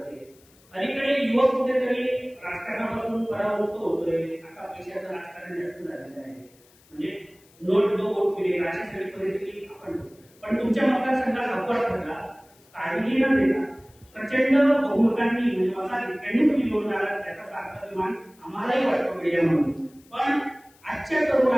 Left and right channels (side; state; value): left; noise; hiss, 29 dB below the sound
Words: अलीकडे युवक कुठेतरी राजकारणापासून परावृत्त होतोय. आता पैशाचं राजकारण जास्त झालेलं आहे, म्हणजे नोट दो वोट मिळेल अशी सगळी परिस्थिती आपण. पण तुमच्या मतदारसंघात अपवाद ठरला, काळजी न देता प्रचंड बहुमतांनी म्हणजे मताधिक्यांनी तुम्ही निवडून आला, त्याचा अभिमान आम्हालाही वाटतो मीडिया म्हणून. पण आजच्या